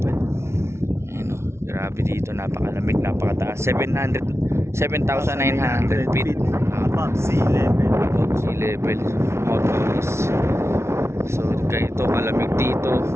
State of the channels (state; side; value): late; left; 0.13 ms